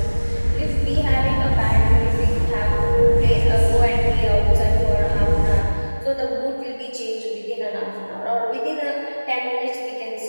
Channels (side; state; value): both; inverted; correlation -1.00